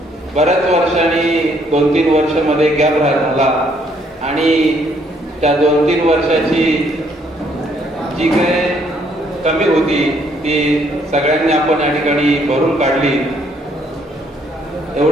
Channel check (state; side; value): normal; both; correlation 0.68